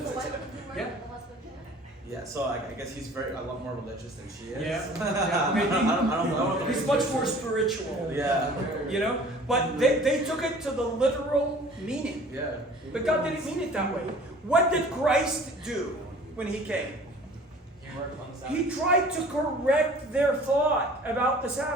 why would you work Yeah. with the husband there? Yeah, so I guess he's a lot more religious than she is. Yeah. I don't know. He's much more spiritual. Yeah. You know? But they took it to the literal meaning. Yeah. But God didn't mean it that way. What did Christ do when he came? He worked on the Sabbath. He tried to correct their thought about the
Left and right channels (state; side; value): normal; both; correlation 0.48